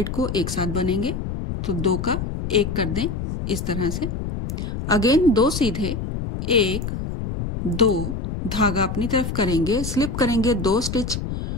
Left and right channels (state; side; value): noise; left; rumble, 4 dB below the sound